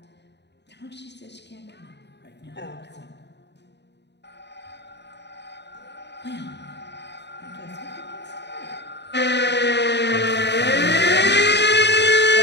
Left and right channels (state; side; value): late; right; 0.50 ms